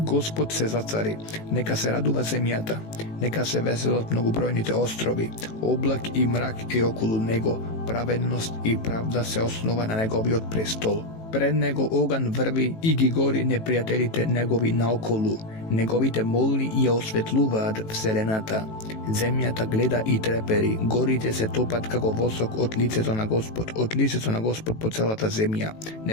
се зацари, нека се радува земјата, нека се веселат многобројните острови, облак и мрак е околу него, праведност и правда се основа на неговиот престол. Пред него оган врви и ги гори непријателите негови наоколу, неговите молни ја осветлуваат вселената. Земјата гледа и трепери, горите се топат како восок од лицето на Господ по целата земја.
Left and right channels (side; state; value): right; late; 18 ms